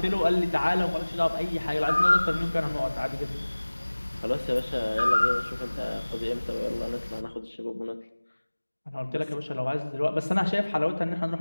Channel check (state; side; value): inverted; both; correlation -1.00